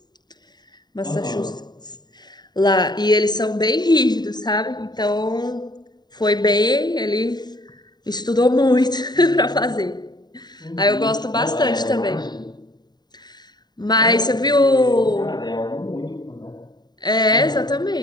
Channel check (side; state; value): right; late; 0.20 ms